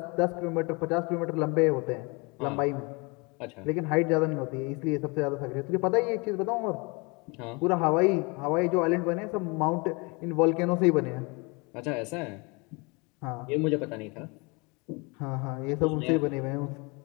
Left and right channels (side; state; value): right; quieter; 28.9 dB